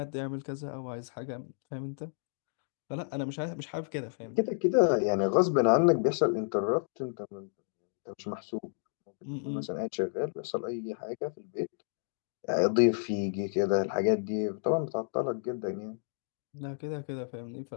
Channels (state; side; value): silent; right; digital silence